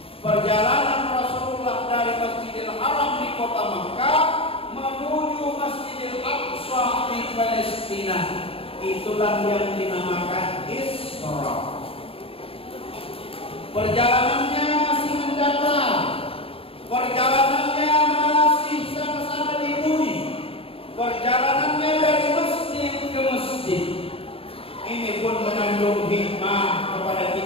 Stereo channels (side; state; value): right; late; 0.27 ms